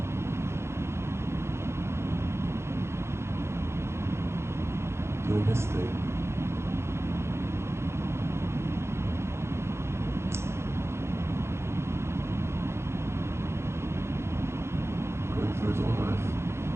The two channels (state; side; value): late; left; 0.13 ms